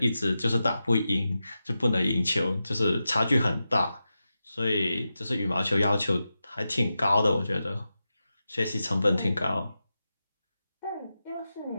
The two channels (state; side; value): inverted; both; correlation -0.91